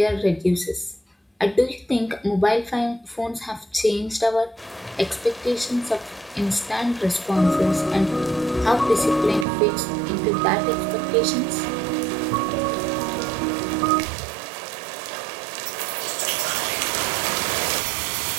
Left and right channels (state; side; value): drops out; left; at 9.5 s